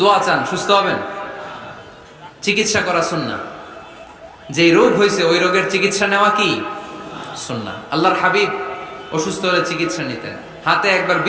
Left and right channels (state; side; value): identical; both; correlation 1.00